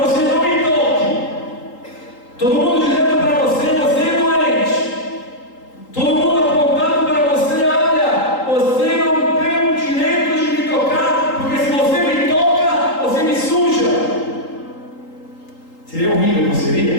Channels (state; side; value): late; right; 3.8 ms